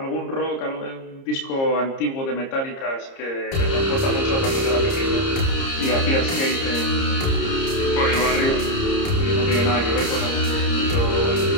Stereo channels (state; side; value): late; right; 30 ms